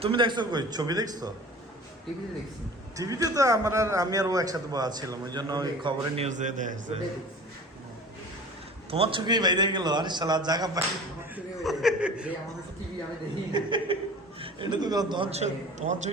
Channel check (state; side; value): normal; both; correlation 0.41